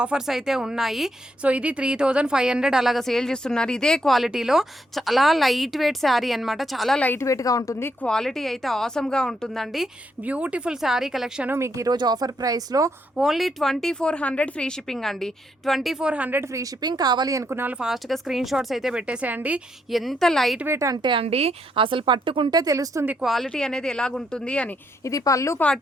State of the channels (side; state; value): both; normal; correlation 0.76